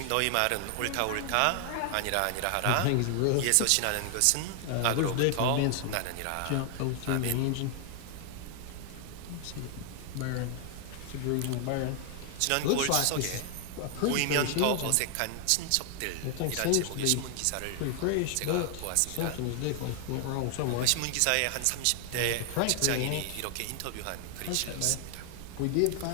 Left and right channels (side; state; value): both; different; correlation 0.00